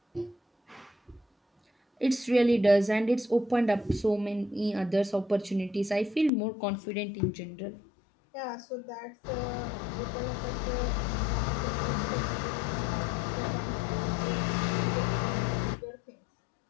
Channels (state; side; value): drops out; right; at 6.3 s